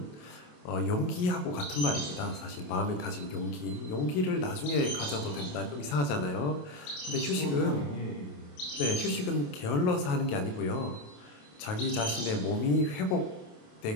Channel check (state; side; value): late; right; 28 ms